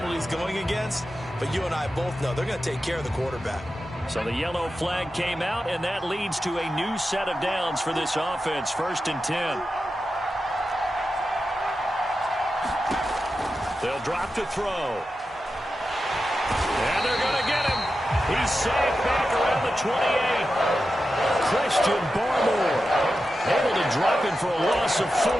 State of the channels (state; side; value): normal; both; correlation 0.91